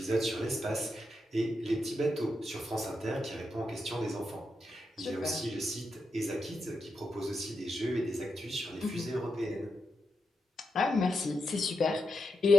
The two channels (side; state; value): both; normal; correlation 0.85